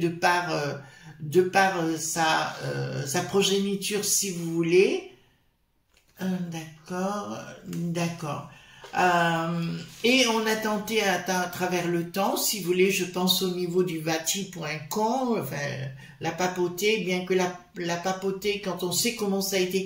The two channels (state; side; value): identical; both; correlation 1.00